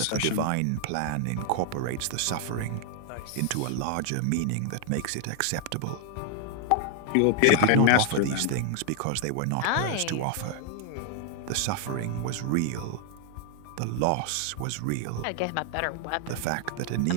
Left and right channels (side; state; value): both; different; correlation 0.00